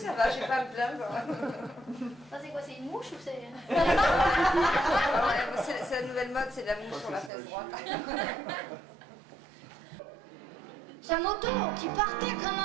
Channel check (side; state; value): left; drops out; at 7.3 s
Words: Ça, c'est quoi? C'est une mouche ou c'est... C'est la nouvelle mode, c'est la mouche sur la fesse droite. Sa moto qui partait comme